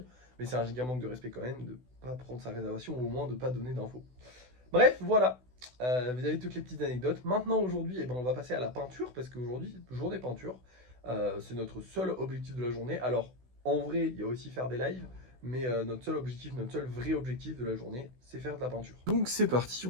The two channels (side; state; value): left; late; 16 ms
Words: mais c'est un giga manque de respect quand même de pas prendre sa réservation ou au moins de pas donner d'infos. Bref, voilà. Vous avez toutes les petites anecdotes. Maintenant, aujourd'hui, eh ben, on va passer à la peinture parce qu'aujourd'hui, journée peinture. C'est notre seul objectif de la journée. Alors, en vrai, il y a aussi faire des lives. Mais notre seul objectif, notre seul vrai objectif de la journée, c'est faire de la peinture. Donc c'est parti, on